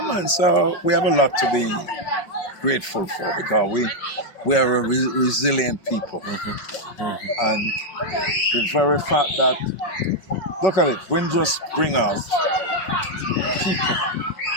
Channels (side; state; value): right; late; 5.3 ms